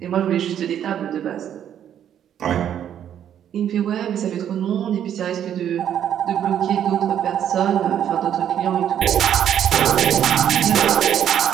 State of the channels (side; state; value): left; quieter; 9.8 dB